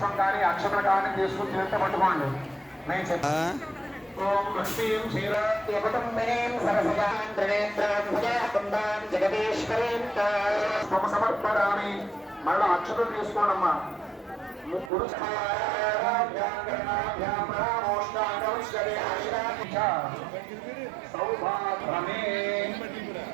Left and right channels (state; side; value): drops out; left; at 14.9 s